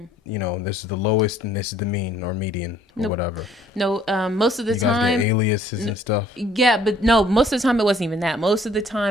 is the lowest, and this is the mean or median or whatever. No, most of the You guys time. get aliases and stuff. Yeah, but no, most of the time it wasn't even that. Most of the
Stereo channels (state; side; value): normal; both; correlation 0.59